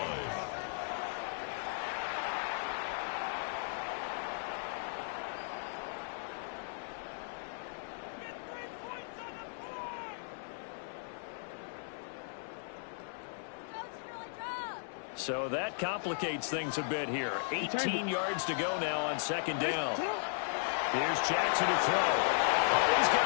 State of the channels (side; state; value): right; silent; 54 dB below the other